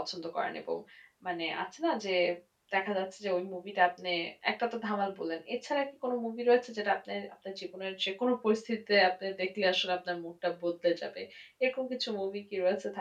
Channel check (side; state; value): both; identical; correlation 1.00